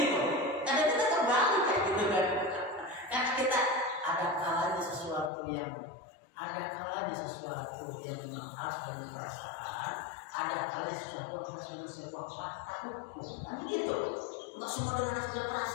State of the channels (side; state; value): right; drops out; at 5.3 s